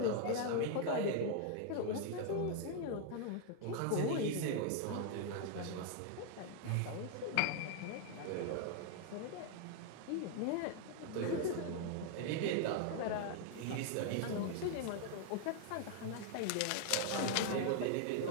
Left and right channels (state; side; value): different; both; correlation 0.00